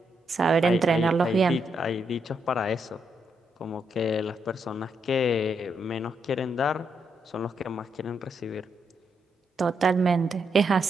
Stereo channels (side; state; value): both; normal; correlation 0.79